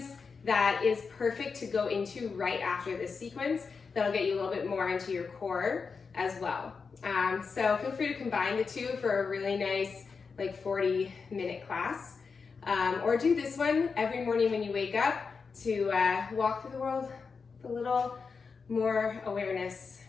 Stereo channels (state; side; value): quieter; right; 5.1 dB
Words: that is perfect to go into right after this sequence. That'll get you a little bit more into your core as well. So feel free to combine the two for a really nice like 40-minute class. Or do this one every morning when you wake up to walk through the world with a little more awareness